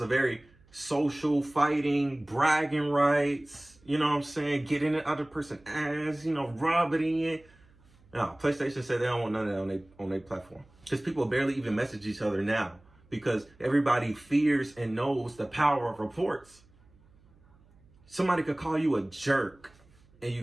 very social, fighting, bragging rights, you know what I'm saying? Get in the other person's ass, you know, rub it in. No, PlayStation said they don't want none of that on their platform. Because people barely even message each other now. Because everybody fears and knows the power of reports. Somebody could call you a jerk and you're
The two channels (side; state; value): right; noise; hum, 29 dB below the sound